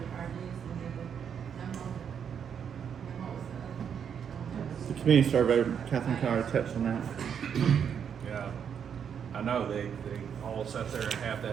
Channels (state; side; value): quieter; left; 7.7 dB